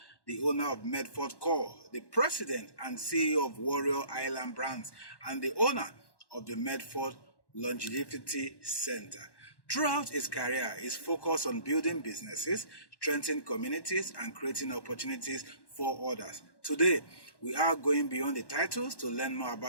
the owner of Medford Core, the president and CEO of Warrior Island Brands, and the owner of the Medford Longevity Center. Throughout his career, his focus on building businesses, strengthening communities, and creating opportunities for others. Today, we are going beyond the titles to learn more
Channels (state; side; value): late; right; 1.1 ms